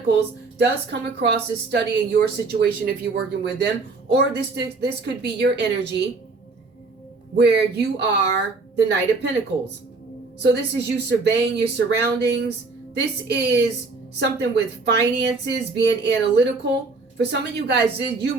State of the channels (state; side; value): quieter; left; 3.8 dB